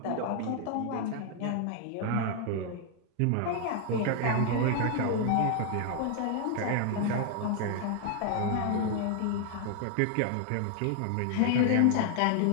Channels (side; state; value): both; different; correlation 0.00